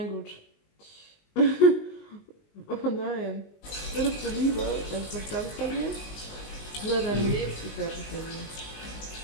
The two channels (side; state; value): right; late; 19 ms